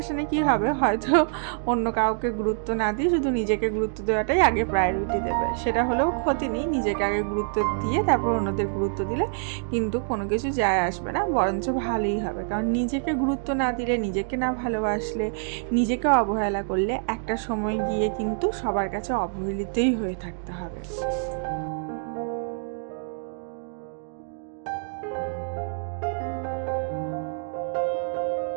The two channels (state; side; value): silent; left; digital silence